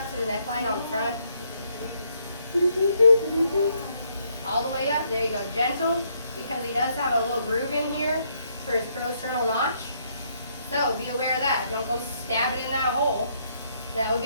to the neckline on the front. All the way up. There you go. Gentle, because he does have a little groove in here for his prosternal notch. So be aware of that. Don't go stab it in that hole. That would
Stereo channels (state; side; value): inverted; both; correlation -0.72